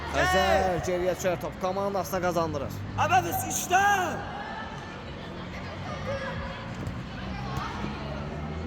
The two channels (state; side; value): identical; both; correlation 1.00